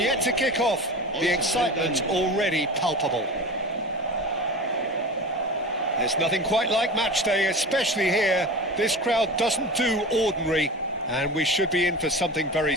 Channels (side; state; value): both; normal; correlation 0.31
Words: to kick off. The excitement already palpable. There's nothing quite like match day, especially here. This crowd doesn't do ordinary, and we should be in for something very